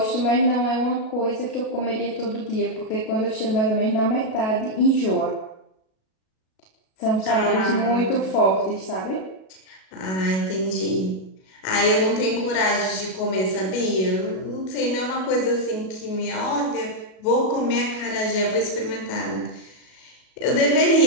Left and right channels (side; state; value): right; late; 37 ms